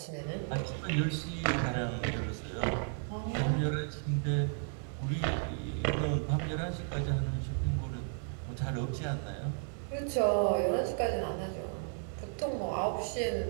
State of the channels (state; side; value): silent; left; 55 dB below the other